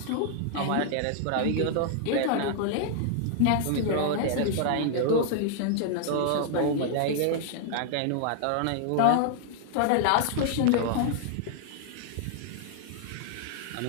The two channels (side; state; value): both; different; correlation -0.01